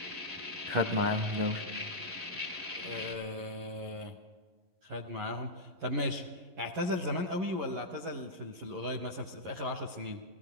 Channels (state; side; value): late; left; 11 ms